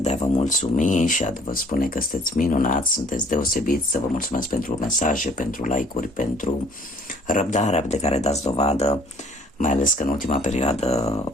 a vă mulțumi și a vă spune că sunteți minunați, sunteți deosebiți, să vă mulțumesc pentru mesaje, pentru like-uri, pentru răbdarea de care dați dovadă, mai ales că în ultima perioadă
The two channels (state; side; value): normal; both; correlation 0.57